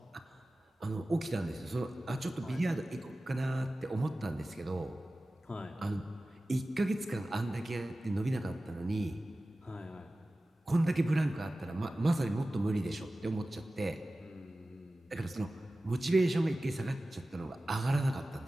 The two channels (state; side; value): normal; both; correlation 0.96